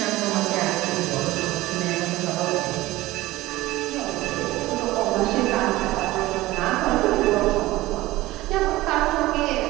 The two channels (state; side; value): quieter; left; 17.9 dB